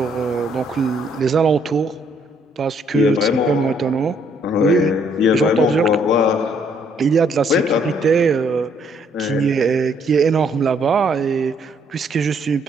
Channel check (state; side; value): normal; both; correlation 0.68